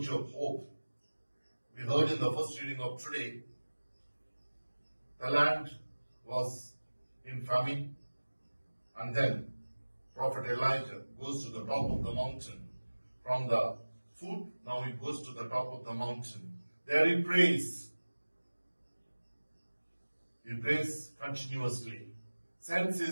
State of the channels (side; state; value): both; inverted; correlation -1.00